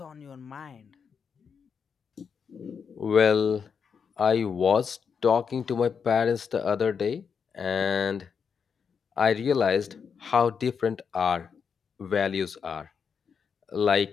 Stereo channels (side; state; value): right; quieter; 6.4 dB